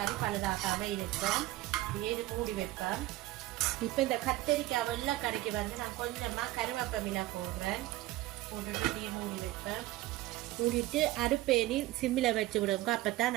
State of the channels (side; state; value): left; quieter; 17.0 dB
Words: பழுதாக்காமல் இருக்கும். இது மூடி வைப்பேன். இப்போ இந்த கத்தரிக்காய் வெள்ளை கறிக்கு வந்து நான் கொஞ்சமாக கருவேப்பிலை போடுறேன். போட்டுட்டு அப்படியே மூடி வைப்பேன். மூடிட்டு அடுப்பேனி சிம்மில் வச்சு விடுங்க. அப்போ